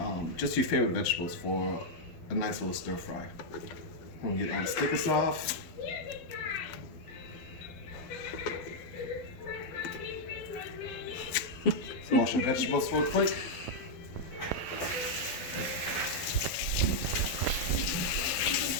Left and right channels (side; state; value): right; late; 12 ms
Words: just your favorite vegetables for a nice little stir fry. I'm gonna get all the stickers off. Wash your vegetables real quick.